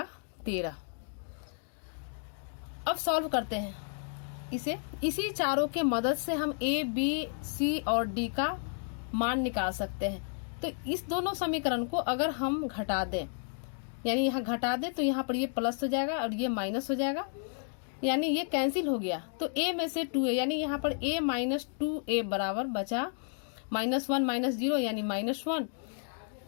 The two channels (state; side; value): silent; right; 56 dB below the other